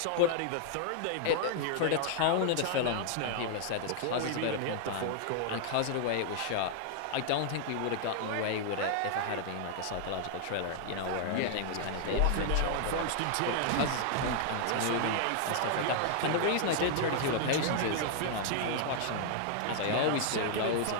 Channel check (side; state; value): both; different; correlation 0.00